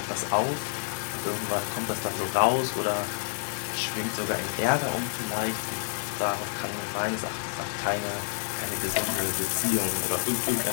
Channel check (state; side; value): silent; right; digital silence